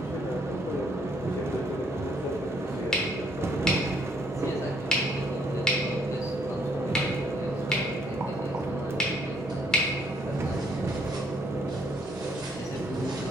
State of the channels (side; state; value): both; normal; correlation 0.67